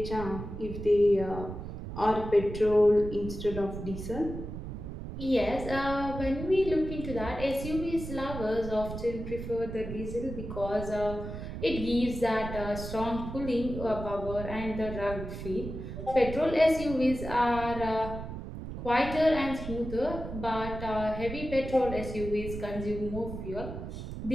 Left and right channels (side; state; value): right; noise; rumble, 8 dB below the sound